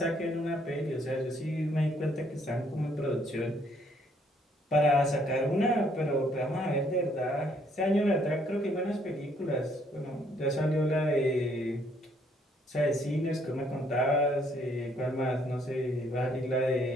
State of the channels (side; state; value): both; normal; correlation 0.67